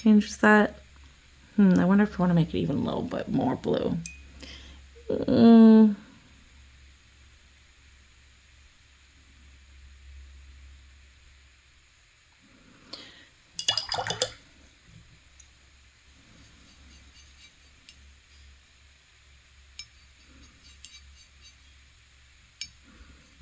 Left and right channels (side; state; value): both; identical; correlation 1.00